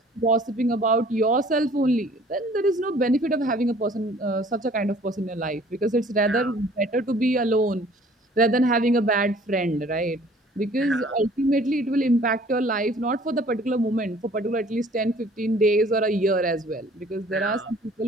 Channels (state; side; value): normal; both; correlation 0.54